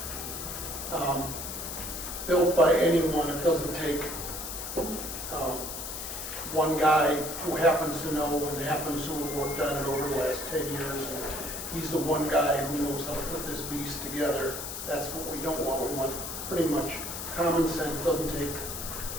built by anyone. It doesn't take one guy who happens to know and happens to have worked on it over the last 10 years. And he's the one guy who knows how to put this beast together. That's what we don't want. We want pretty much common sense. Doesn't take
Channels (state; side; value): noise; left; hiss, 7 dB below the sound